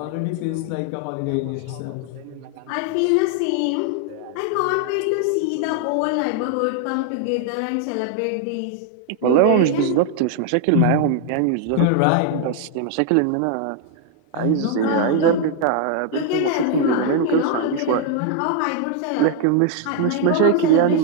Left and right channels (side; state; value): both; different; correlation 0.00